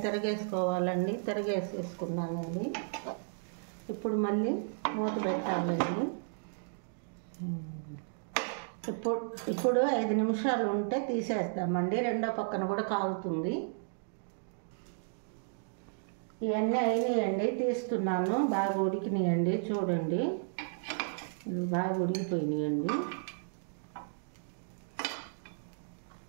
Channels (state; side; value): silent; left; digital silence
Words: తిరగేసుకోవాలండి, తిరగేసేసుకున్నానండి. ఇప్పుడు మళ్ళీ మూత పెట్టాలండి. ఇప్పుడు 5 నిమిషాలు ఉంటే తీసేస్తామండి, రెండో పక్కన కూడా కాలుతుంది. ఇవన్నీ అయినాయండి, తీస్తున్నాను. బాగా ఉడికినాయండి, చూడండి బాగా ఉడికిపోయినాయండి.